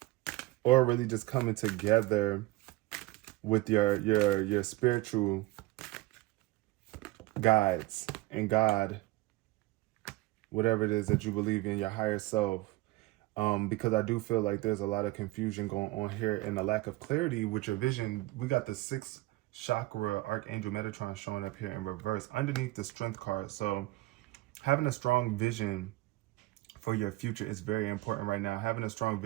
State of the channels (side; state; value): left; quieter; 19.1 dB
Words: or really just coming together with your spiritual guides and God, whatever it is that you believe in, your higher self. Because I do feel like there's a lot of confusion going on here and a lack of clarity with your vision. We got the 6th chakra Archangel Metatron showing up here in reverse underneath the Strength card. So having a strong vision for your future is very important right now. Having a strong